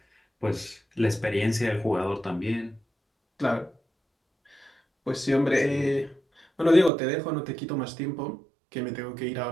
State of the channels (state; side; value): drops out; left; at 6.9 s